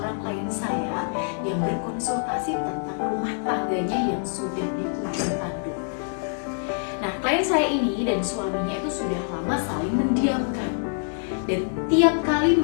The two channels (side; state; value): right; silent; digital silence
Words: klien saya yang berkonsultasi tentang rumah tangganya yang sudah di ujung tanduk. Nah, klien saya ini dan suaminya itu sudah lama saling mendiamkan. Dan tiap kali